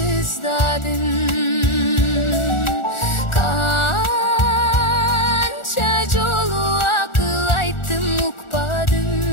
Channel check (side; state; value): right; late; 1.4 ms